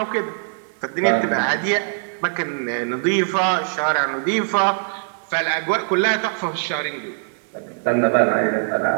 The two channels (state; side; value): silent; left; digital silence